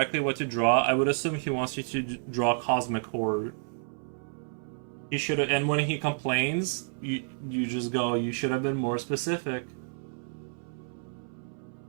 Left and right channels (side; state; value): left; silent; 58 dB below the other